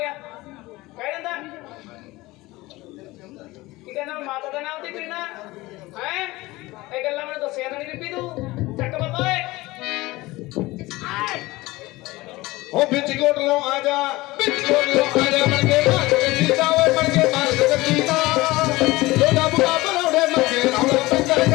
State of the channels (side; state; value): right; quieter; 20.1 dB